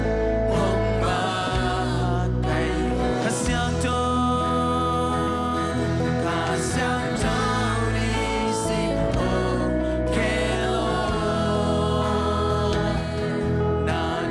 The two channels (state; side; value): identical; both; correlation 1.00